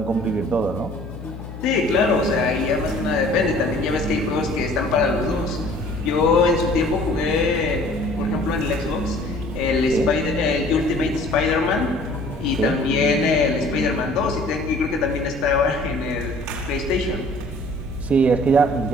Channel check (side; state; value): left; noise; hum, 12 dB below the sound